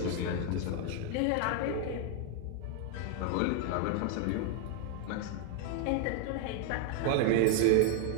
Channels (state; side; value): different; both; correlation 0.00